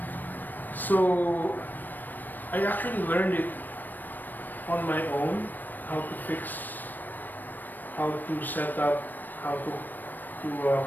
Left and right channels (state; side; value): late; right; 0.089 ms